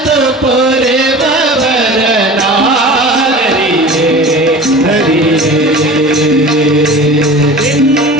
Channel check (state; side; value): normal; both; correlation 0.37